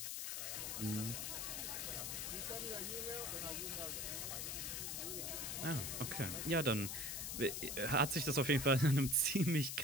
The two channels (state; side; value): noise; left; hiss, 3 dB below the sound